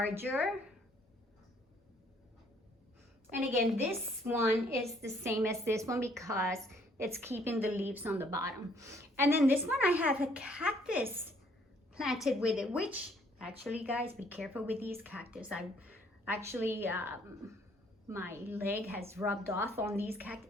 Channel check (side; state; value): both; normal; correlation 0.64